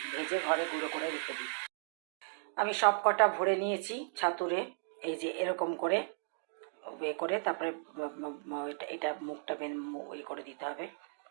ভেজে ঘরে গুঁড়ো করে রেখে দিই। আমি সব কটা ভরে নিয়েছি ছাতুরে, এই যে এরকম করে করে তারপরে এটা মুখটা করে দিতে হবে।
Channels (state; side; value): silent; left; digital silence